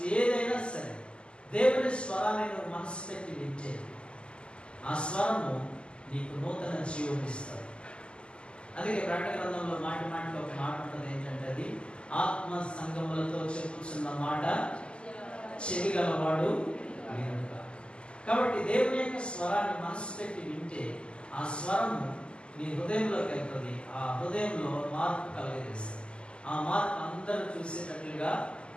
ఏదైనా సరే దేవుని స్వరాన్ని నువ్వు మనసు పెట్టి వింటే ఆ స్వరము నీకు నూతన జీవం ఇస్తుంది. అందుకే ప్రకటన గ్రంథంలో మాటి మాటికి ఒక మాట ఉంటుంది. ఏంటంటే అది ఆత్మ సంగములతో చెప్పుచున్న మాట చెవి గలవాడు వినుట. కాబట్టి దేవుని యొక్క స్వరాన్ని మనసు పెట్టి వింటే ఆ స్వరము నీ హృదయంలోకి వెళ్తుంది. ఆ హృదయంలో మార్పు కలిగజేస్తుంది. ఆ మార్పు అందరూ చూసేటట్లుగా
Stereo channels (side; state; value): right; late; 0.051 ms